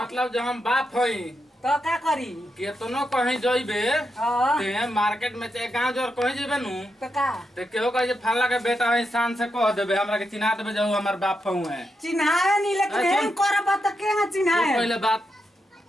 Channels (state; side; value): normal; both; correlation 0.84